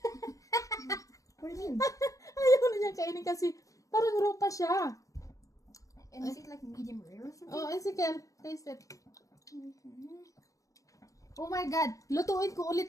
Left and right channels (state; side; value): late; right; 0.16 ms